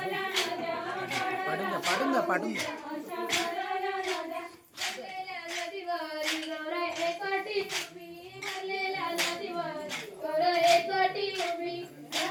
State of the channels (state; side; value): identical; both; correlation 1.00